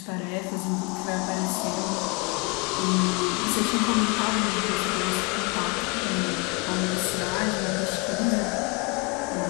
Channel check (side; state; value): right; quieter; 28.1 dB